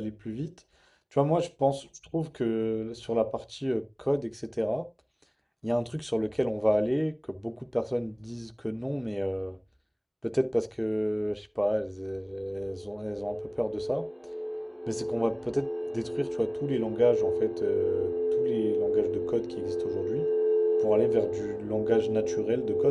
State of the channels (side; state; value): both; identical; correlation 1.00